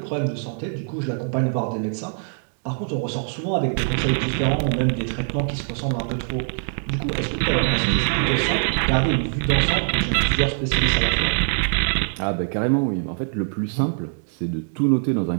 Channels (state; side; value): silent; left; digital silence